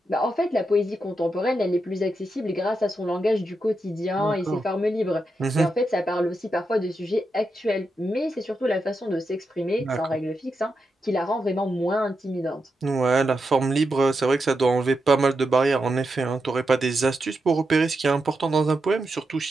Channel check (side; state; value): both; normal; correlation 0.86